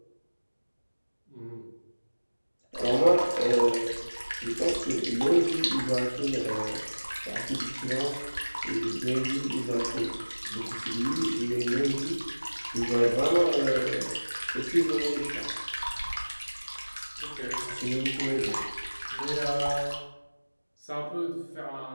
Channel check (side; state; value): both; inverted; correlation -1.00